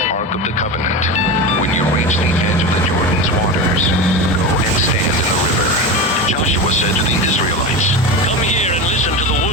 Ark of the Covenant, when you reach the edge of the Jordan's waters, go and stand in the river. Joshua said to the Israelites, Come here and listen to the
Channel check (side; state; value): both; normal; correlation 0.24